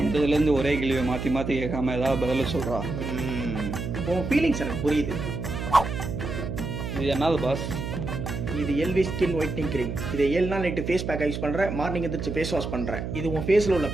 வந்ததுலேருந்து ஒரே கேள்வியை மாற்றி மாற்றி கேட்காம ஏதாவது பதில சொல்கிறா. உன் ஃபீலிங்ஸ் எனக்கு புரியுது. இது என்னது பாஸ்? இது எல்வி ஸ்கின் ஒயிட்னிங் கிரீம். இதை 7 நாள் நைட்டு ஃபேஸ் பேக்கை யூஸ் பண்ணுறேன், மார்னிங் எந்திரிச்சு ஃபேஸ் வாஷ் பண்ணுறேன். இது உன் ஃபேஸில் உள்ள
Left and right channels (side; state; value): right; noise; hum, 5 dB below the sound